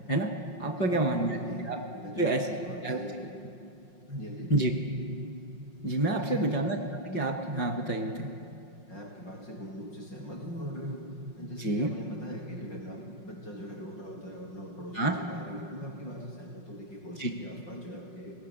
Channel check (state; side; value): late; right; 5.5 ms